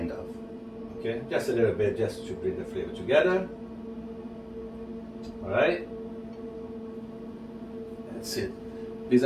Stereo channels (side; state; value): both; identical; correlation 1.00